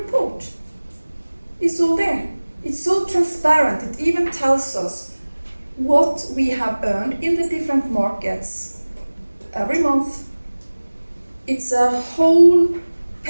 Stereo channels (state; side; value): inverted; both; correlation -1.00